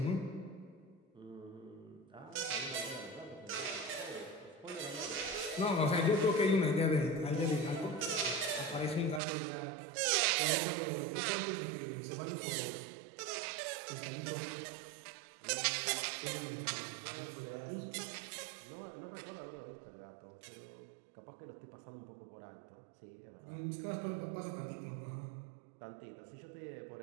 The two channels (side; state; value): left; drops out; at 9.2 s